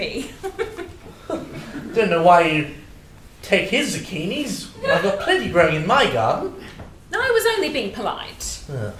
Don't know why you take his zucchinis. I've got plenty growing in my garden. No, I was only being polite.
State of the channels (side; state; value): both; identical; correlation 1.00